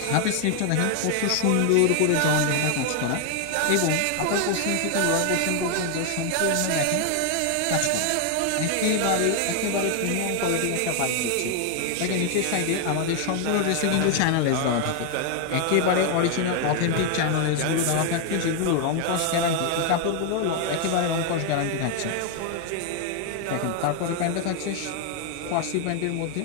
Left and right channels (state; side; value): different; both; correlation 0.00